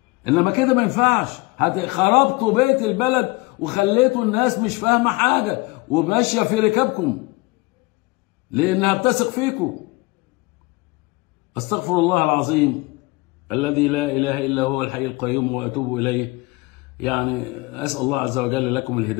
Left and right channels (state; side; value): quieter; right; 23.9 dB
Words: انما كده ما ينفعش. خربتوا بيت البلد وخليتوا الناس مش فاهمه حاجه وماشيه في ركابكم لانها بتثق فيكم. استغفر الله العظيم الذي لا اله الا هو الحي القيوم واتوب اليه. يعني اسال الله عز وجل لكم